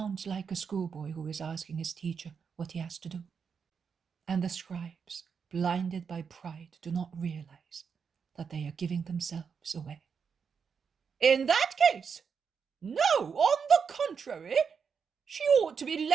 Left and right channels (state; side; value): quieter; left; 6.3 dB